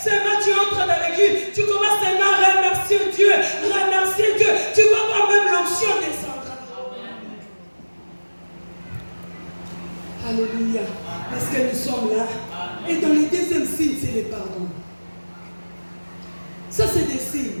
Seulement tu entres dans l'église, tu commences seulement à remercier Dieu, remercier Dieu. Tu vas voir même l'onction descendre. Alléluia. Parce que nous sommes là. Et dans le deuxième signe, c'est le pardon. Ça, c'est des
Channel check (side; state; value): both; inverted; correlation -1.00